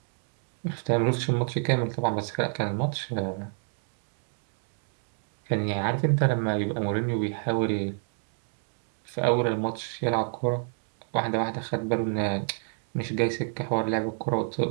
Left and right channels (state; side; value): silent; left; digital silence